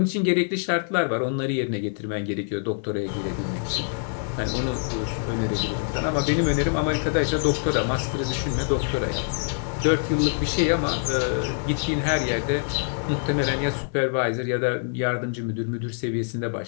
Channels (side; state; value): right; silent; 62 dB below the other